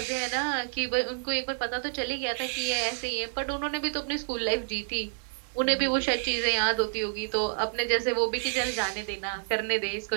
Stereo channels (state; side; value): silent; left; digital silence